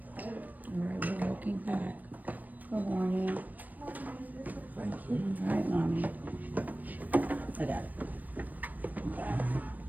All right, we're walking back. Good morning. Thank you. All right, mommy. I got it.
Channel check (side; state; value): left; late; 0.083 ms